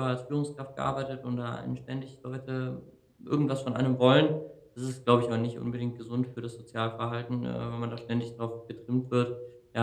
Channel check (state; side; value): identical; both; correlation 1.00